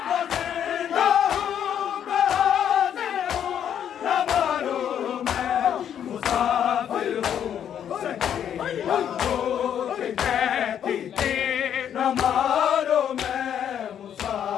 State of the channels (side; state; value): right; quieter; 9.3 dB